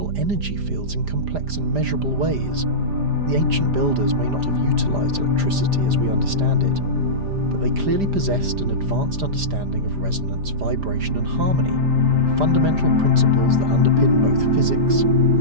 energy fields in complex and measurable ways. The ancient builders may not have utilised electricity as we understand it, but they clearly possessed an advanced understanding of resonance, vibration, and harmony, fundamental principles that underpin both physics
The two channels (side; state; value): left; late; 5.0 ms